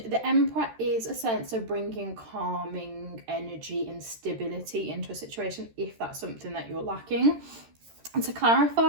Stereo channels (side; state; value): left; late; 13 ms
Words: Emperor is a sense of bringing calming energy and stability into a situation if that's something that you're lacking. And to